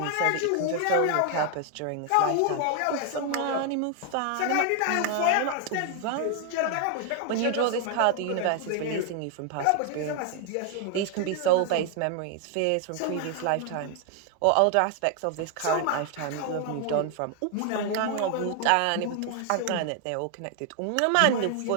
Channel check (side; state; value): both; different; correlation 0.00